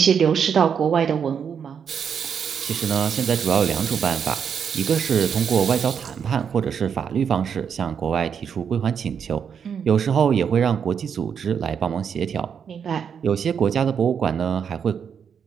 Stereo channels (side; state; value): left; quieter; 7.3 dB